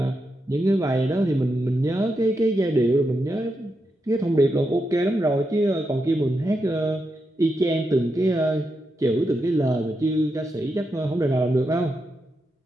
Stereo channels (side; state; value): both; normal; correlation 0.85